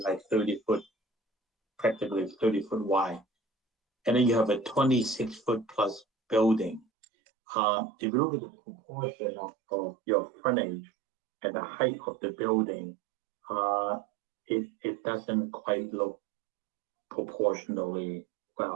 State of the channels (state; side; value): drops out; left; at 6.9 s